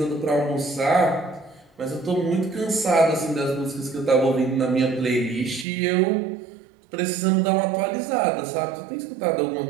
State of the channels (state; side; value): drops out; left; at 5.7 s